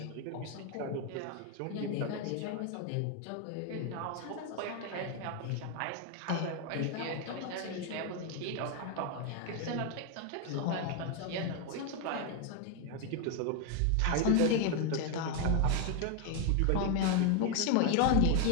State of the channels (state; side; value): different; both; correlation 0.01